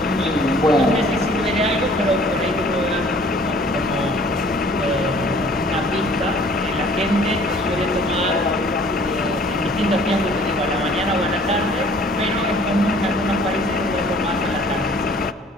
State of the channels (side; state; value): both; normal; correlation 0.54